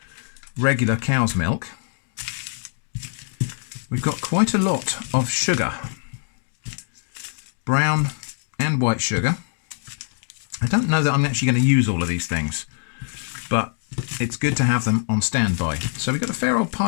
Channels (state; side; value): silent; right; 63 dB below the other